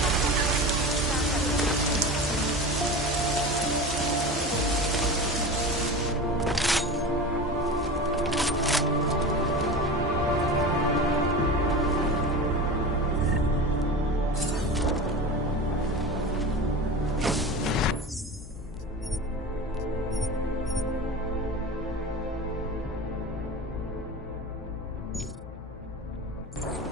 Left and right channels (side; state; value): left; noise; hum, 14 dB below the sound